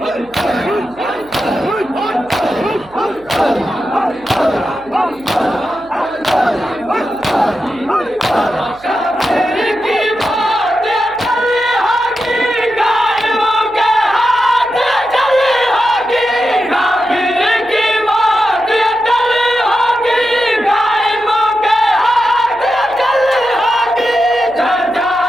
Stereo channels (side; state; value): right; noise; hum, 26 dB below the sound